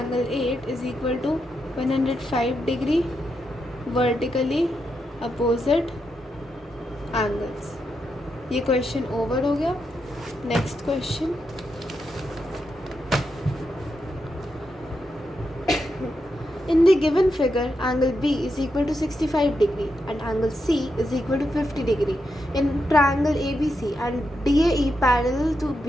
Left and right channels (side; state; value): both; normal; correlation 0.84